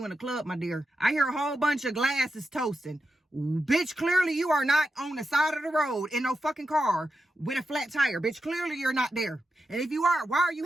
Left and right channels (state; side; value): normal; both; correlation 0.88